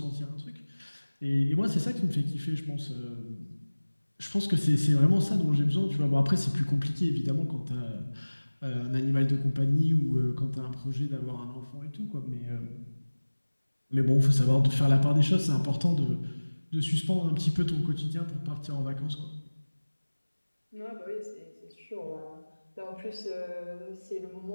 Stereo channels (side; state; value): both; inverted; correlation -1.00